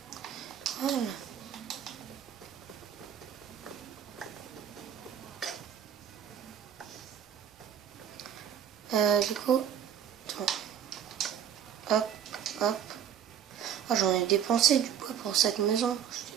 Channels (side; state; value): left; quieter; 9.4 dB